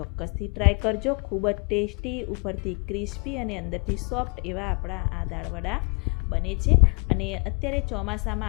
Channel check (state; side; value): quieter; right; 36.4 dB